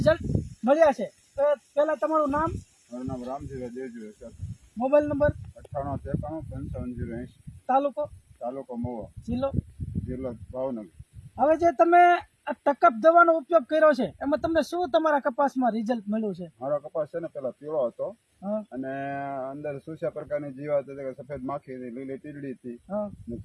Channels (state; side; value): identical; both; correlation 1.00